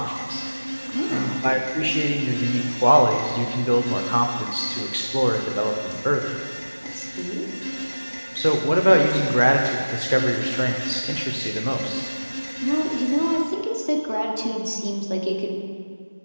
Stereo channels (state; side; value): inverted; both; correlation -1.00